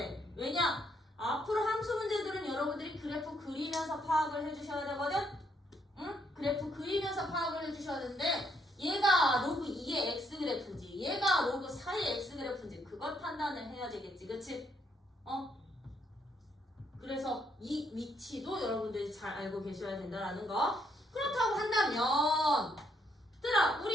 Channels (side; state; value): both; normal; correlation 0.73